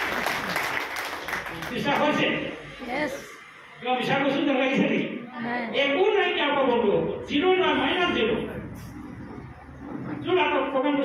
বিশ্বাস হৈছে কিবা বিশ্বাস কৈছোঁ যেন লাগিছে নেকি একো নাই কি আকৌ বন্ধু হ'ব 0 নাই -0 যোন আকৌ প্ৰগ্ৰামটো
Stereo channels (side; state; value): both; identical; correlation 1.00